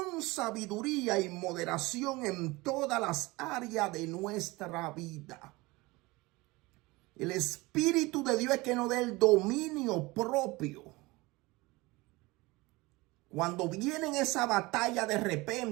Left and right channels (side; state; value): left; quieter; 22.3 dB